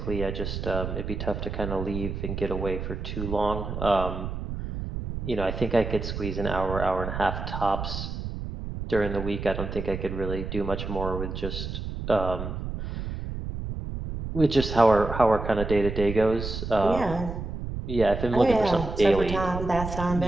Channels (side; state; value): right; noise; rumble, 6 dB below the sound